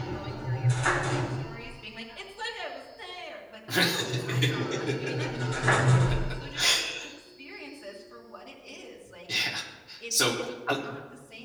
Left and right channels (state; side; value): identical; both; correlation 1.00